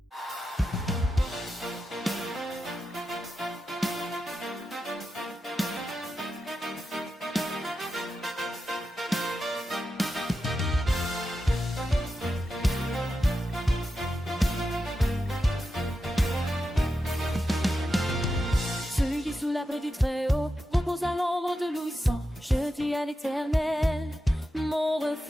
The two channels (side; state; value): both; normal; correlation 0.89